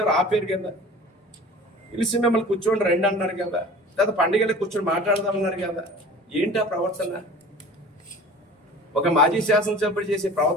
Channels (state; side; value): normal; both; correlation 0.42